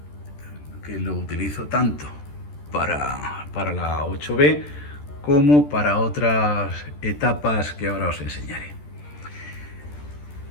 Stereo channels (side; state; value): right; late; 14 ms